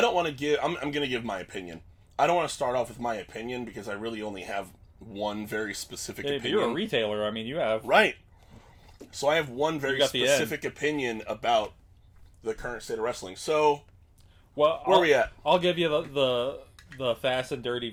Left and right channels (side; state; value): both; identical; correlation 1.00